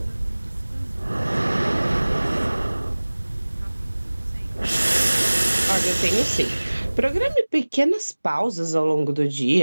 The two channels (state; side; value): inverted; both; correlation -1.00